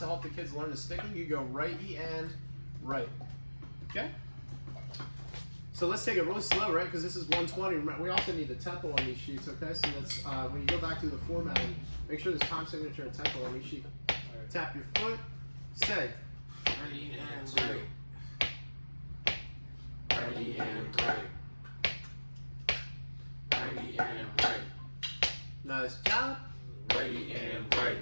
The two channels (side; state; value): both; inverted; correlation -1.00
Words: help the kids learn the sticking, you go right E and right. Okay? So let's take it really slow, right? Because this is 120. We also need the tempo on these sheets, okay? So let's, when you go back to the formatting, make sure there's time signature and tempo on each sheet. Tap your foot, say. Ready and right. Ready and right. Ready and right. Nice job. Ready and right.